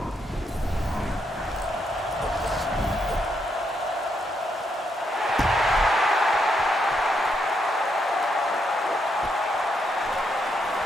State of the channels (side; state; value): both; normal; correlation 0.78